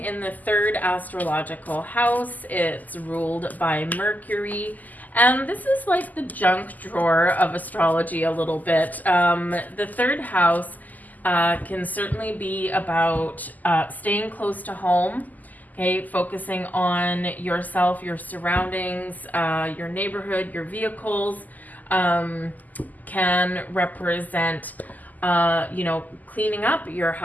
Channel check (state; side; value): late; right; 0.081 ms